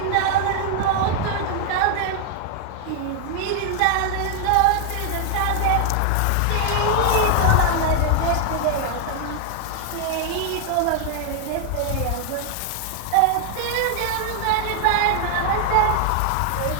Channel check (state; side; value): different; both; correlation 0.00